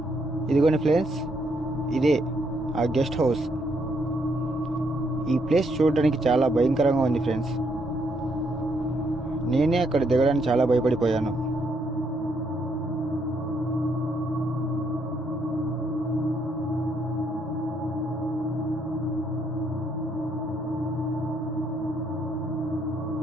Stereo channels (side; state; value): both; normal; correlation 0.74